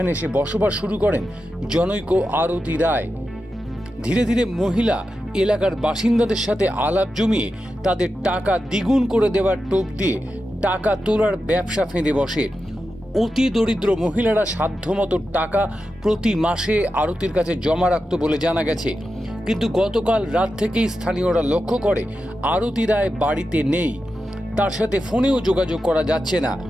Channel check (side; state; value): both; normal; correlation 0.90